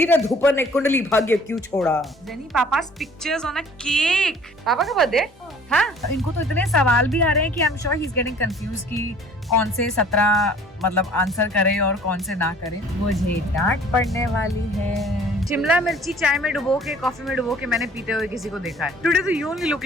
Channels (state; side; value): normal; both; correlation 0.52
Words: धूपर ने कुंडली भाग्य क्यों छोड़ा? जेनी पापा's pictures on a cake। पापा का बर्थडे? हाँ, इनको तो इतने सवाल भी आ रहे हैं कि I am sure he is getting confuse कि कौन से 17 मतलब आंसर करे और कौन से ना करे। मुझे डांट पड़ने वाली है। शिमला मिर्ची चाय में डुबो के, कॉफी में डुबो के मैंने पीते हुए किसी को देखा है। टुडे तो you only look